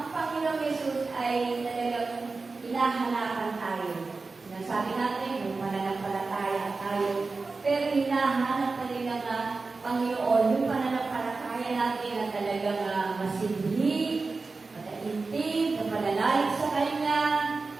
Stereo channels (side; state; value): left; quieter; 4.0 dB